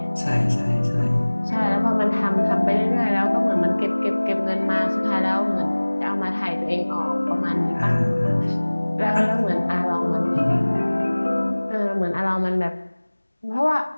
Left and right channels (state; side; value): inverted; both; correlation -1.00